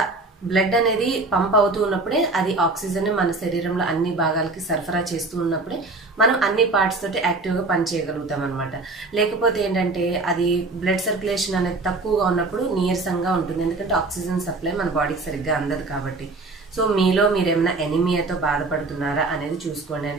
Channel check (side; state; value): left; quieter; 3.4 dB